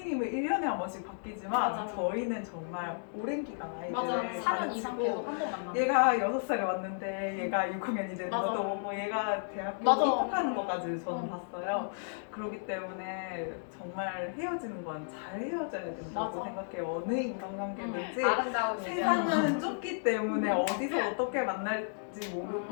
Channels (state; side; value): silent; right; digital silence